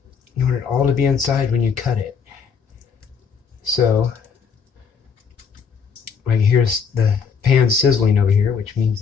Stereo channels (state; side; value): quieter; right; 6.4 dB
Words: You want it all to be inside when you cut it. So, like, here's the pan sizzling over here, which means